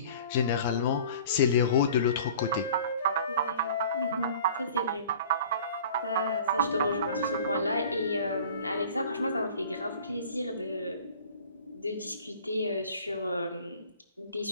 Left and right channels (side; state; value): both; inverted; correlation -0.46